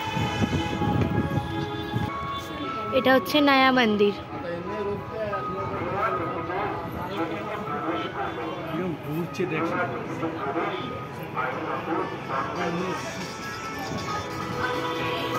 এটা হচ্ছে নয়া মন্দির। ঘুরছে দেখছি।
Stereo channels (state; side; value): identical; both; correlation 1.00